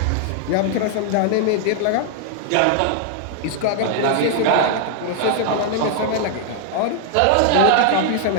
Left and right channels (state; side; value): different; both; correlation 0.00